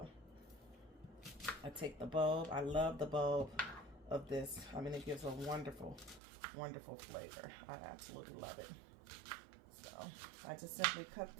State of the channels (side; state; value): left; drops out; at 6.2 s